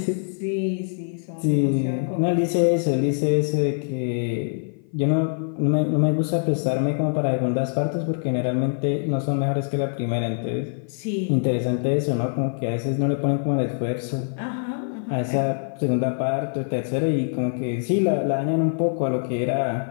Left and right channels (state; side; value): silent; right; 55 dB below the other